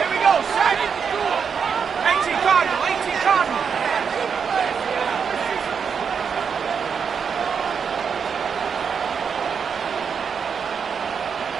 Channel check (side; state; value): left; quieter; 6.5 dB